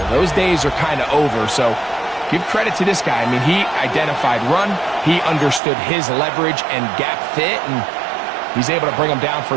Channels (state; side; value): drops out; left; at 5.6 s